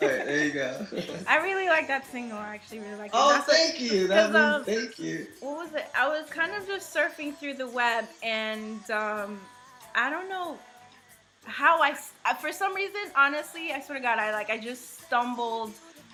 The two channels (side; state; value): both; identical; correlation 1.00